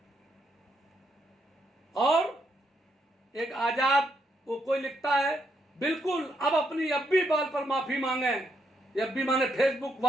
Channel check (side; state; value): both; normal; correlation 0.77